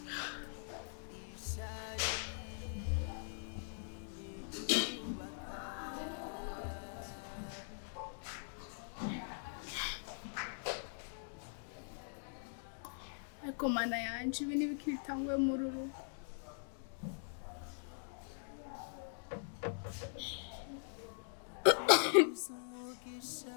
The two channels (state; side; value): silent; right; digital silence